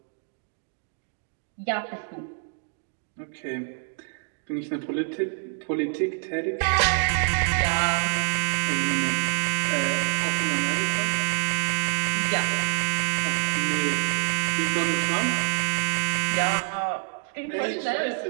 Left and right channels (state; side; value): silent; left; digital silence